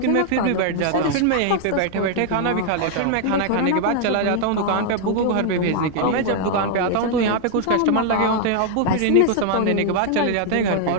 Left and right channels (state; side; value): different; both; correlation 0.00